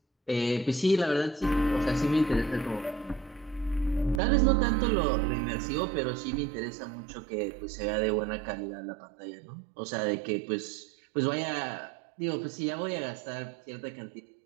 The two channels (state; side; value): drops out; left; at 4.2 s